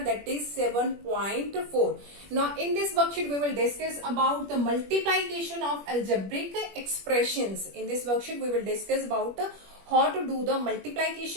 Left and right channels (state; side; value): late; left; 21 ms